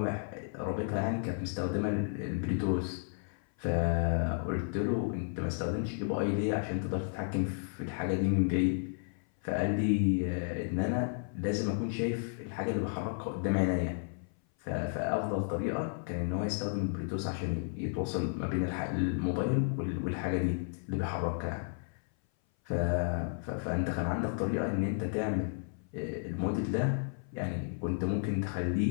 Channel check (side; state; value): right; silent; 56 dB below the other